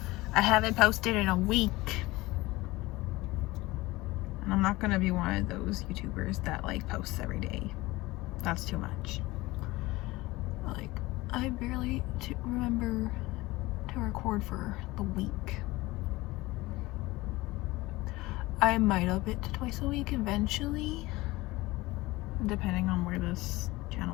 I haven't posted in a week. And I'm not gonna be one of those YouTubers that like posts every day. That's too much. Like, I barely remember to record for the week. I might up it to twice a week eventually, depending on where this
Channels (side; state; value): right; quieter; 20.1 dB